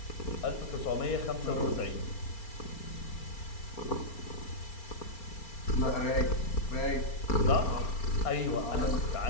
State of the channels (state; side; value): late; right; 4.4 ms